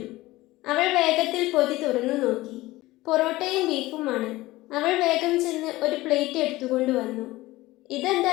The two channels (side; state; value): right; quieter; 18.6 dB